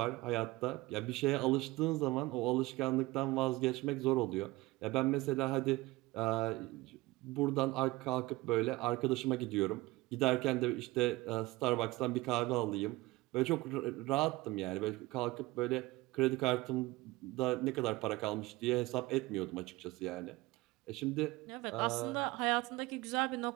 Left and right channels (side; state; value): left; quieter; 20.5 dB